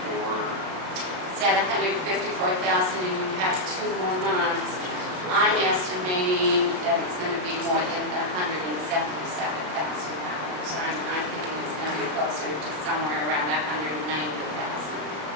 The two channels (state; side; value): late; left; 33 ms